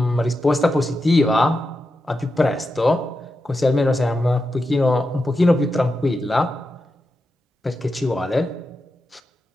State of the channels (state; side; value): normal; both; correlation 0.89